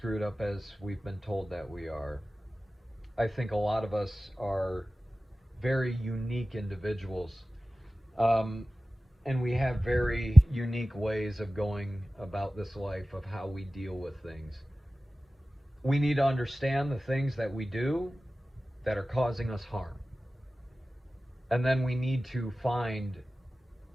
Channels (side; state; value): both; normal; correlation 0.96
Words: up as we've been told that we are. I think a lot of us are very unique individuals, and we have very unique ways of going about this life, of how we deal with things. We need to understand the things that we do that are causing us harm, and then we need to find